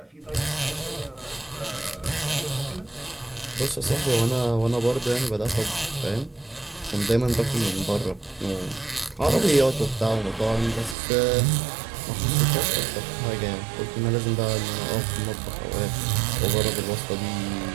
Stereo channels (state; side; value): drops out; left; at 11.0 s